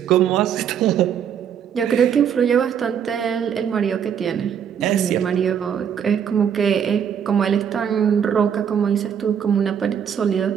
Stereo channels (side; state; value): left; quieter; 8.3 dB